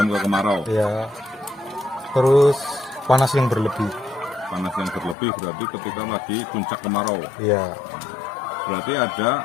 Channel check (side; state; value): right; drops out; at 5.2 s